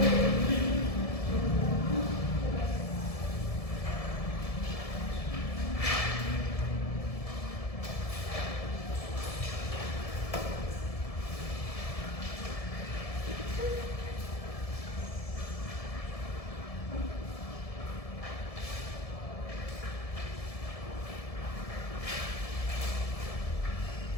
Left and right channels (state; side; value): late; right; 1.7 ms